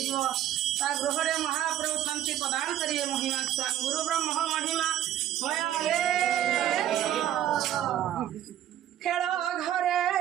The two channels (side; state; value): left; quieter; 12.0 dB